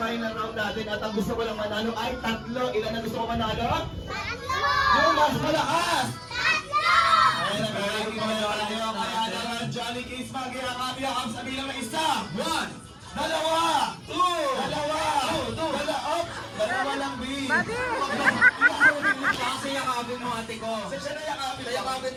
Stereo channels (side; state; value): both; identical; correlation 1.00